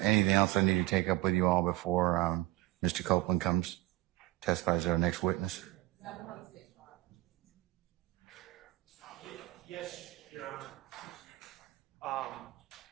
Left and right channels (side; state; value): left; quieter; 18.1 dB